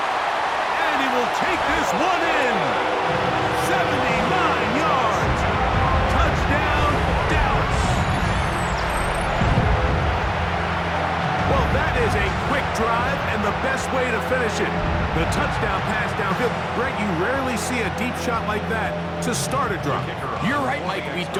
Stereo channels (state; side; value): identical; both; correlation 1.00